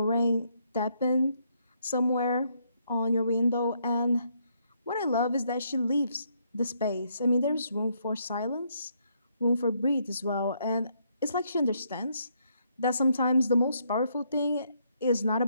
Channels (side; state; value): both; inverted; correlation -0.73